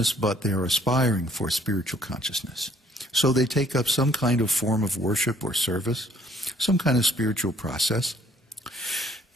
but they're aspiring for spiritual consciousness. So they take up some kind of form of worship or service, some kind of spiritual process.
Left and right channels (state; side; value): normal; both; correlation 0.61